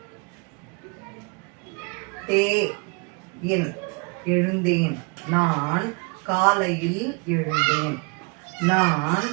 எழுந்தேன். நான் காலையில் எழுந்தேன். நான்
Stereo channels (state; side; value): quieter; left; 33.1 dB